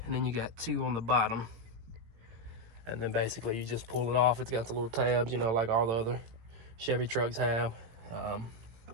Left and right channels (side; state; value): left; late; 18 ms